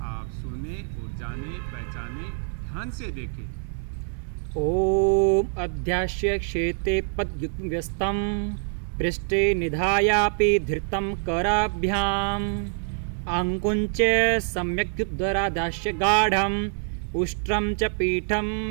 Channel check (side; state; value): left; silent; 58 dB below the other